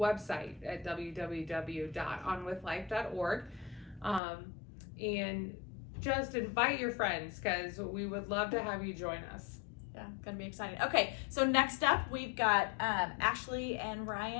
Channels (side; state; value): right; drops out; at 4.2 s